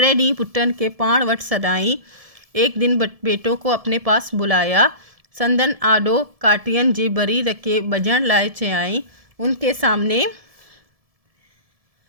ॾींहुं पुटनि के पाण वटि सॾाई। एक दिन बेटों को अपने पास बुलाया। संदन आॾो काटियन जी बरी रखे बजण लाइ चयाई। उनके सामने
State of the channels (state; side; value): late; left; 1.7 ms